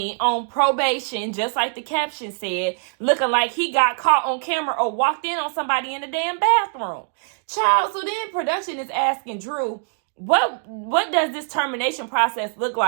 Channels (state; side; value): silent; left; digital silence